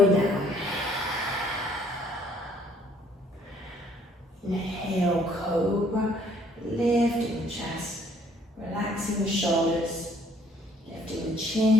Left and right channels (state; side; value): normal; both; correlation 0.62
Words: down. Inhale, cobra, lifting the chest, relaxing the shoulders, lifting the